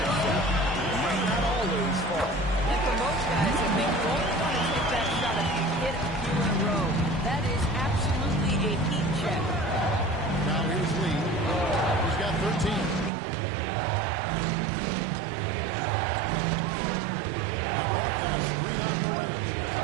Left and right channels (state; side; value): drops out; left; at 13.1 s